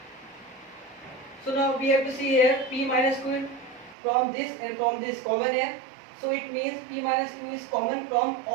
so now we have to see here p minus q from this and from this common here, so it means p minus q is common from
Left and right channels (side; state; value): left; drops out; at 4.0 s